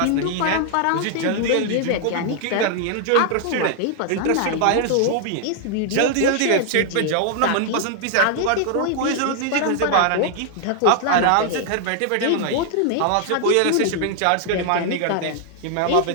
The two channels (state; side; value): different; both; correlation 0.00